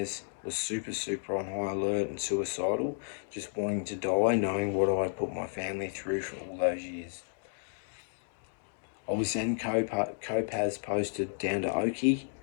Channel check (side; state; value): right; silent; digital silence